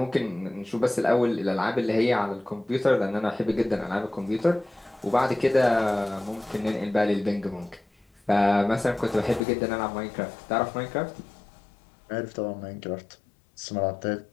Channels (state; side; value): drops out; right; at 9.4 s